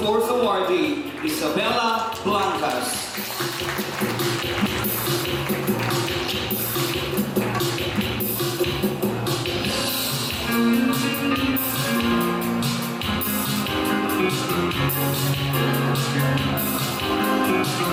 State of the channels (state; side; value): identical; both; correlation 1.00